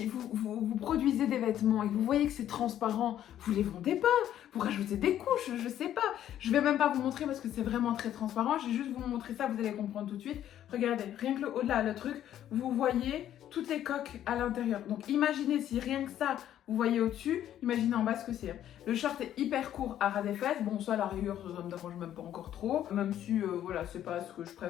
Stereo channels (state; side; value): quieter; right; 11.3 dB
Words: vous produisez des vêtements et que vous voyez que c'est transparent, vous les vendez pas. Vous rajoutez des couches, je sais pas. Je vais même pas vous montrer parce que c'est vraiment très transparent. Je vais juste vous montrer ça, vous allez comprendre tout de suite. Regardez, rien que le au-delà, le truc, vous voyez toutes les coques à l'intérieur. Donc imaginez si rien que ça, vous voyez au-dessus, imaginez en bas ce que c'est. Le short est hyper court à ras des fesses. Bon, ça, à la rigueur, ça me dérange même pas encore trop. Même si, voilà, c'est pas ce que je